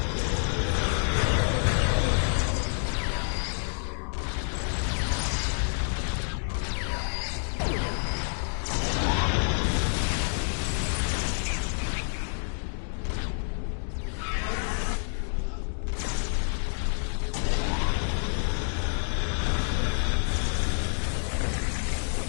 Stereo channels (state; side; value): silent; right; 59 dB below the other